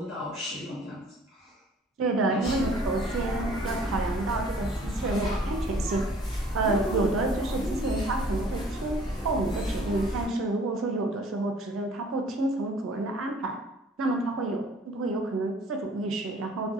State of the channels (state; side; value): normal; both; correlation 0.54